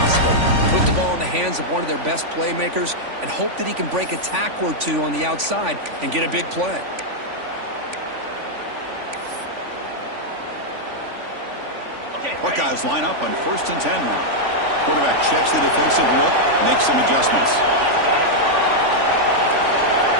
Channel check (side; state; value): left; late; 3.5 ms